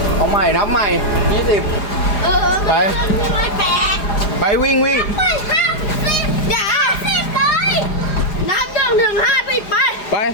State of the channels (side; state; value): right; late; 4.9 ms